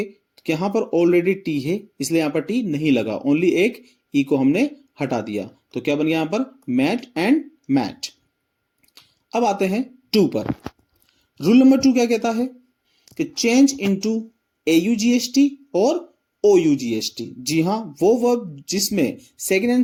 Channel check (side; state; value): both; identical; correlation 1.00